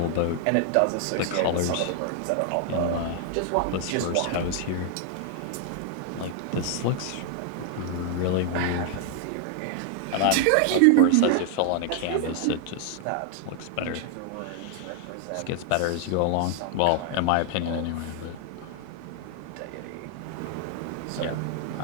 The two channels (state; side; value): different; both; correlation 0.00